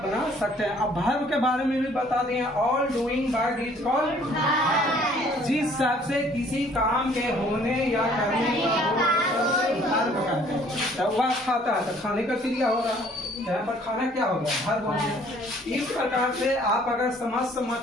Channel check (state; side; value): normal; both; correlation 0.58